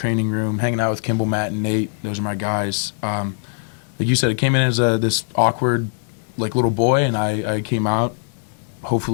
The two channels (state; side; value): silent; right; digital silence